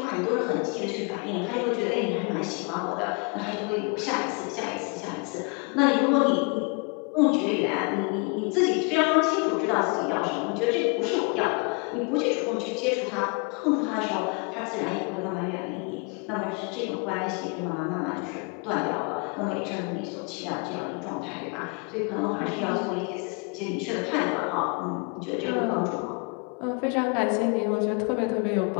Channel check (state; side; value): quieter; right; 33.6 dB